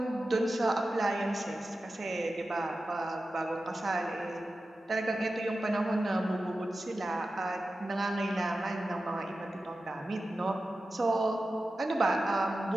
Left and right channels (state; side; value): normal; both; correlation 0.93